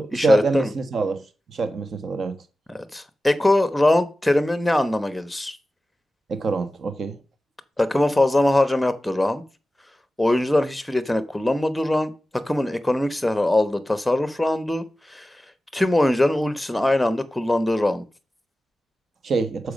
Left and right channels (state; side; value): normal; both; correlation 0.95